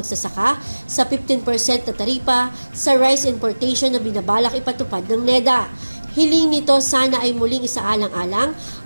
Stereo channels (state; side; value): inverted; both; correlation -1.00